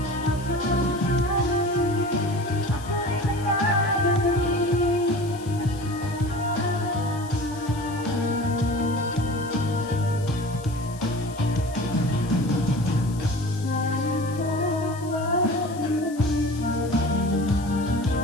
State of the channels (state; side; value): noise; left; hiss, 19 dB below the sound